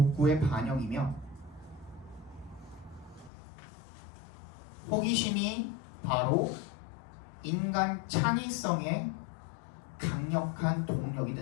호기심이 바로 인간 창의성의 강력한 동력이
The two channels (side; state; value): right; drops out; at 3.3 s